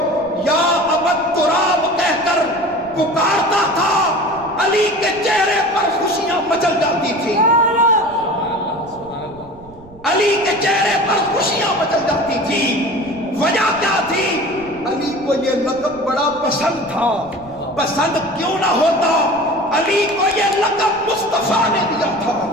یا ابو تراب کہہ کر پکارتا تھا علی کے چہرے پر خوشیاں مچل جاتی تھی، علی کے چہرے پر خوشیاں مچل جاتی تھی. وجہ کیا تھی؟ علی کو یہ لقب بڑا پسند تھا. پسند کیوں نہ ہوتا، علی کو یہ لقب مصطفیٰ نے دیا تھا.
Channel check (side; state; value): right; noise; rumble, 22 dB below the sound